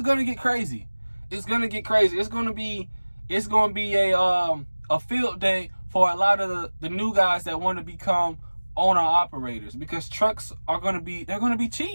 to get crazy. It's going to get crazy. It's going to be a field day for a lot of the new guys that want to become owner operators, because trucks are going to be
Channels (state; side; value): inverted; both; correlation -1.00